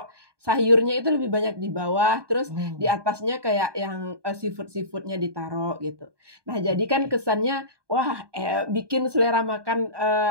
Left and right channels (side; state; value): left; late; 1.2 ms